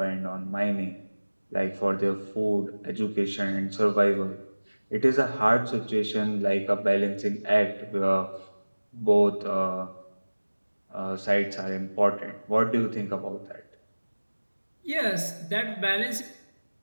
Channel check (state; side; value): inverted; both; correlation -1.00